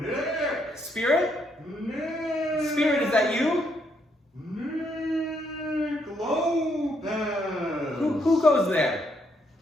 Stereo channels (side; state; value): both; normal; correlation 0.74